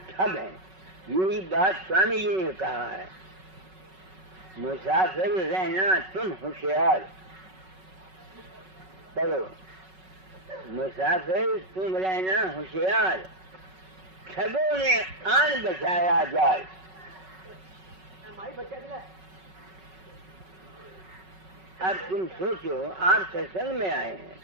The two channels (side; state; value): left; late; 5.3 ms